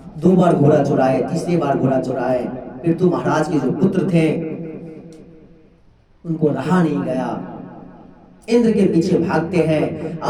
2 बार घोड़ा चुराए, तीसरी बार घोड़ा चुराए, फिर तो महाराज के जो पुत्र थे उनको रहा नहीं गया, इंद्र के पीछे भागते हैं।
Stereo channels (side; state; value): both; identical; correlation 1.00